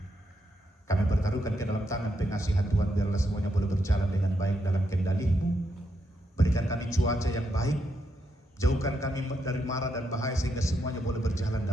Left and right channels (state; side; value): normal; both; correlation 0.81